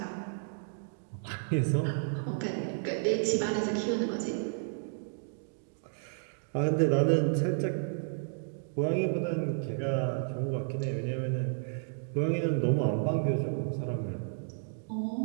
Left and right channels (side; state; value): left; silent; digital silence